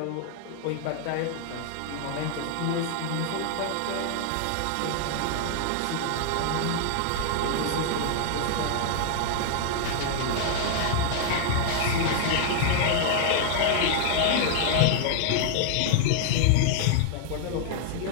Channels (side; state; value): both; different; correlation 0.00